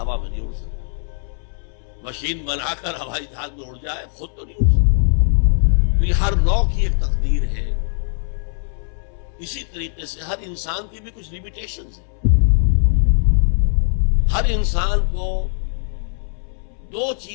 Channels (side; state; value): right; silent; 65 dB below the other